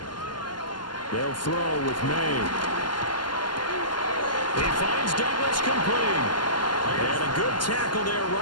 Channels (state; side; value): late; right; 0.71 ms